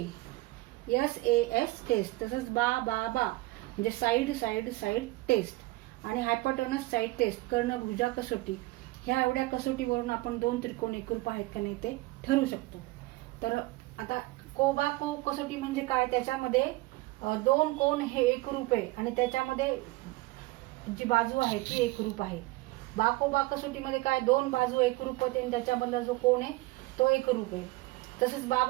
S A S test. तसंच बा बा बा म्हणजे साईड साईड साईड टेस्ट, आणि हायपोटेनस साईड टेस्ट, कर्ण भुजा कसोटी. ह्या एवढ्या कसोटीवरून आपण दोन त्रिकोण एकरूप आहेत का नाही ते ठरवू शकतो. तर आता को बा को कसोटी म्हणजे काय? त्याच्यामध्ये दोन कोण हे एकरूप आहे आणि त्याच्यामध्ये जी बाजू आहे ती एकरूप आहे. बा को बा कसोटीमध्ये काय? दोन बाजू एकरूप होते आणि त्याच्यामधला जो कोण आहे तो एकरूप आहे. तसंच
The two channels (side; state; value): left; quieter; 20.7 dB